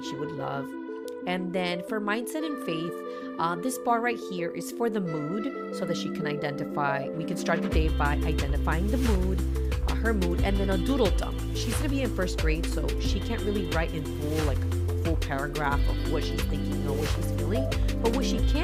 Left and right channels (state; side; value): identical; both; correlation 1.00